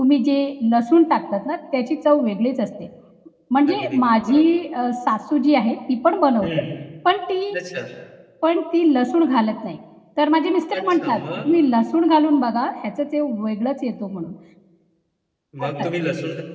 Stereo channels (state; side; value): identical; both; correlation 1.00